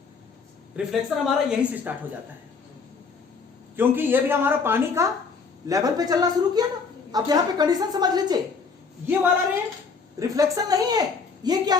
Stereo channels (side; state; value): right; quieter; 5.1 dB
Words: रिफ्लेक्शन हमारा यहीं से स्टार्ट हो जाता है, क्योंकि ये भी हमारा पानी का लेवल पे चलना शुरू किया ना। अब यहां पे कंडीशन समझ लीजिए, ये वाला रे रिफ्लेक्शन नहीं है, ये क्या